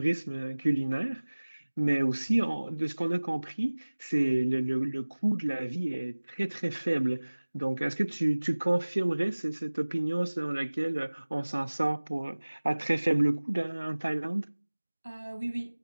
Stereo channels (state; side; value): inverted; both; correlation -1.00